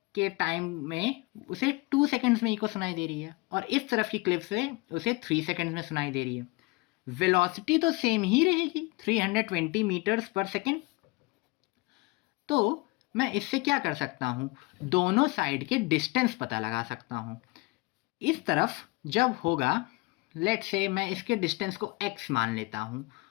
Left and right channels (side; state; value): right; quieter; 25.0 dB